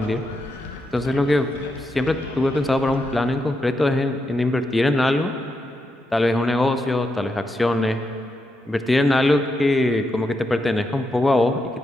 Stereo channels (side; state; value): both; normal; correlation 0.83